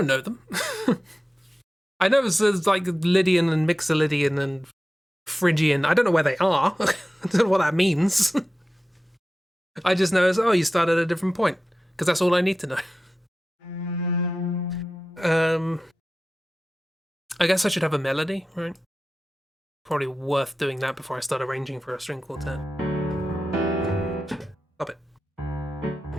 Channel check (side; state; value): both; normal; correlation 0.94